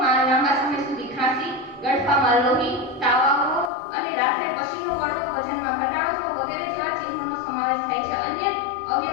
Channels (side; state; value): right; drops out; at 3.7 s